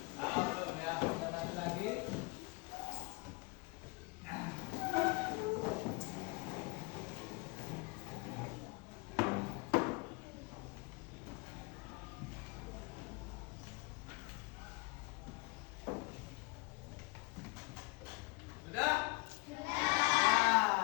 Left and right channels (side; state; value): right; quieter; 27.2 dB